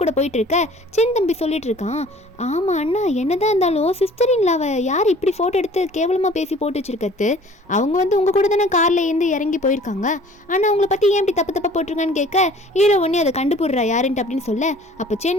கூட போயிட்டு இருக்க. சென் தம்பி சொல்லிட்டு இருக்கான், ஆமாம் அண்ணா என்னதான் இருந்தாலும் சிஸ்டர் இல்லாவ யார் இப்படி ஃபோட்டோ எடுத்து கேவலமாக பேசி போட்டு வச்சிருக்கிறது, அவங்க வந்து உங்கள் கூட தானே காரில் இருந்து இறங்கி போயிருக்காங்க, ஆனால் அவங்கள பற்றி ஏன் இப்படி தப்பு போட்டிருக்கான்னு கேட்க ஹீரோ ஒன்னே அதை கண்டுபிடுறா யாருன்ட்டு அப்படின்னு சொல்ல, அப்போ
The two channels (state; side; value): normal; both; correlation 0.50